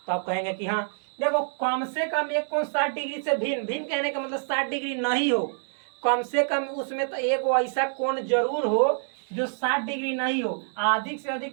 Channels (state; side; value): silent; left; 60 dB below the other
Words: तो आप कहेंगे कि हाँ देखो, कम से कम एक कोण 60 डिग्री से भिन्न, भिन्न कहने का मतलब 60 डिग्री नहीं हो, कम से कम उसमें तो एक वो ऐसा कोण जरूर हो जो 60 डिग्री नहीं हो, अधिक से अधिक